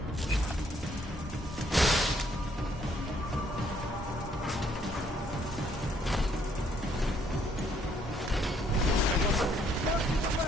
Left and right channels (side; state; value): both; normal; correlation 0.67